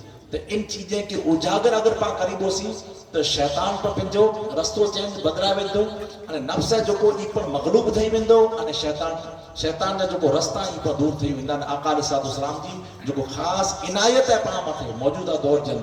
तो इन चीजें के उजागर अगर पा करीबोसी तो शैतान पर पंजो रस्तो चेंज बदला वेंदो अने नफ्स जो को ई पर मगलूब थई वेंदो अने शैतान जा जो को रास्ता ई पर दूर थई वेंदा आका अलैहि सलाम जी जो को खास इनायत है पा मथे मौजूदा दौर के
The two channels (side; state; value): both; identical; correlation 1.00